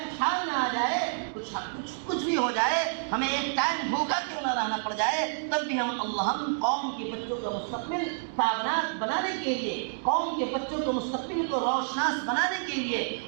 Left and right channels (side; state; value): left; silent; digital silence